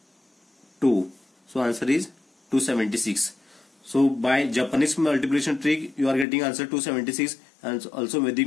2. So answer is 276. So by Japanese multiplication trick you are getting answer 276, and also Vedic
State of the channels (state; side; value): drops out; right; at 6.2 s